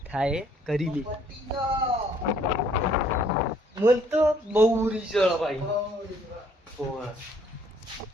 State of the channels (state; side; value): normal; both; correlation 0.63